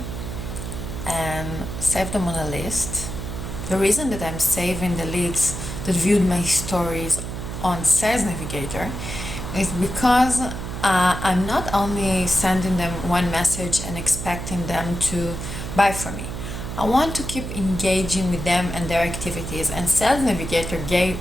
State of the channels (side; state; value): right; noise; hum, 6 dB below the sound